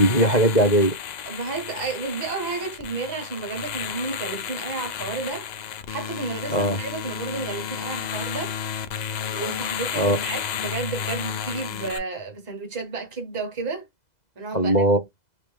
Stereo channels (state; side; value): late; right; 2.0 ms